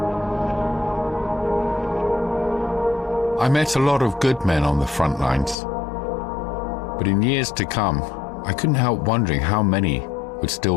I met a lot of good men on the front lines, but in years to come, I couldn't help wondering how many would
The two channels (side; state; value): right; drops out; at 5.6 s